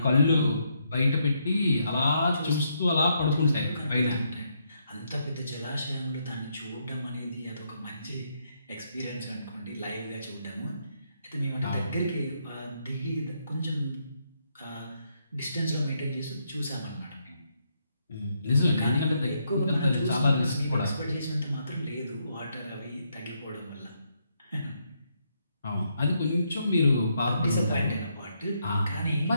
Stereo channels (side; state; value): both; inverted; correlation -0.77